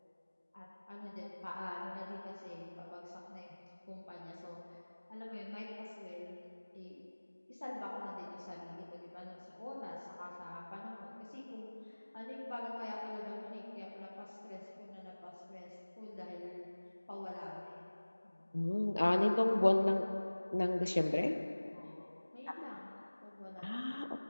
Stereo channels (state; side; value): inverted; both; correlation -1.00